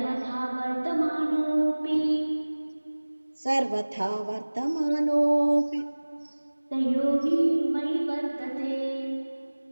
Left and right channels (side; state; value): both; inverted; correlation -1.00